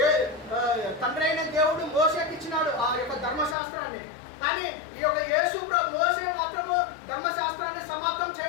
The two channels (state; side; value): drops out; right; at 3.6 s